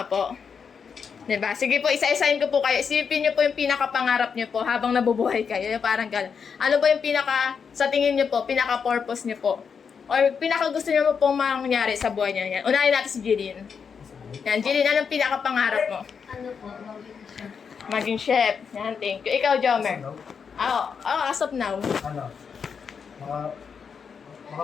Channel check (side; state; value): right; quieter; 6.3 dB